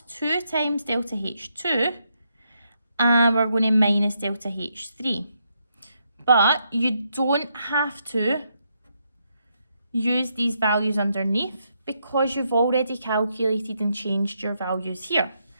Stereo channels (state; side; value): inverted; both; correlation -0.79